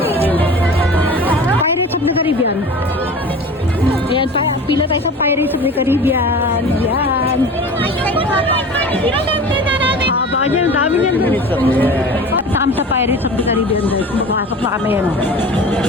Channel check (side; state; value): both; normal; correlation 0.37